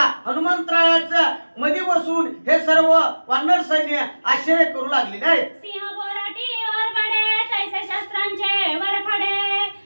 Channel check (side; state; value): both; inverted; correlation -1.00